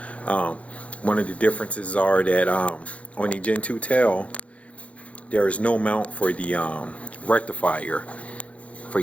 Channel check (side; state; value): right; late; 0.064 ms